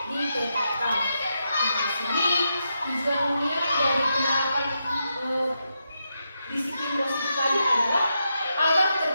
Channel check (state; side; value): inverted; both; correlation -0.85